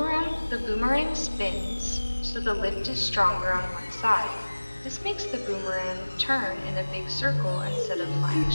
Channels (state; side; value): inverted; both; correlation -1.00